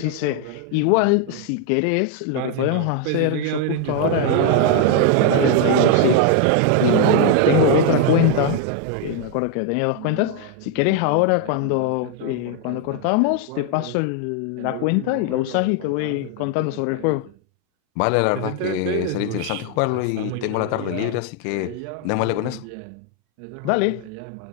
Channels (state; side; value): different; both; correlation 0.00